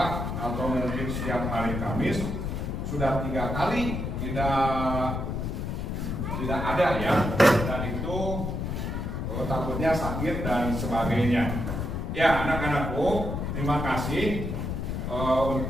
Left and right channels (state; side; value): noise; left; rumble, 3 dB below the sound